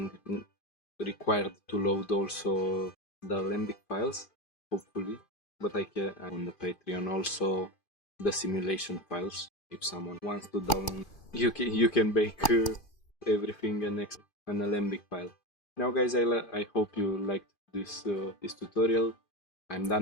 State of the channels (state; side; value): late; right; 2.5 ms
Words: required to load also the Alembic files, hopefully. But I can on the Patreon also the simulation files. If someone wants to download, you can bake everything and an Alembic file. Now guys, I hope you liked this tutorial. I'm